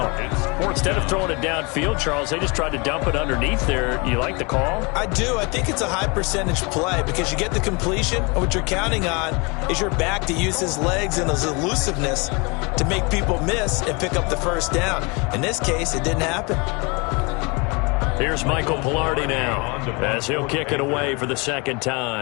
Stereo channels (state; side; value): quieter; right; 29.5 dB